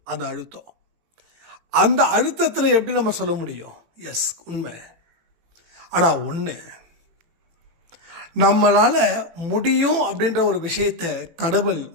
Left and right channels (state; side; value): late; left; 18 ms